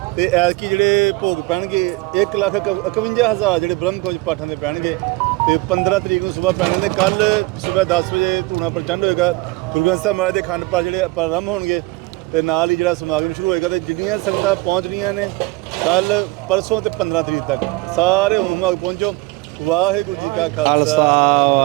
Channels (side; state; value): left; quieter; 21.5 dB